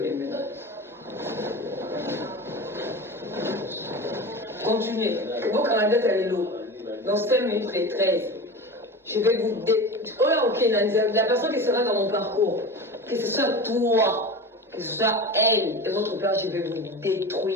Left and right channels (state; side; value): normal; both; correlation 0.29